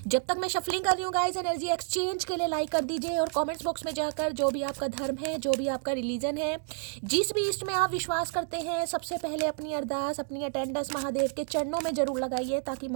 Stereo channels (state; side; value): silent; left; 55 dB below the other